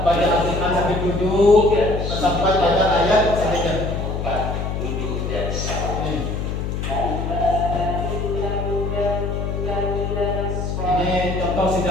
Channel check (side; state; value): left; noise; hum, 3 dB below the sound